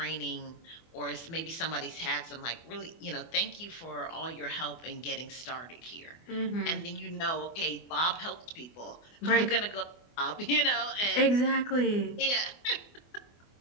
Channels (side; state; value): right; late; 24 ms